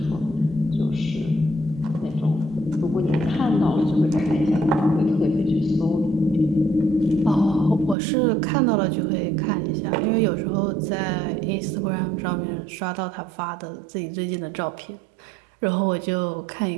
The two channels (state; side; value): drops out; left; at 8.0 s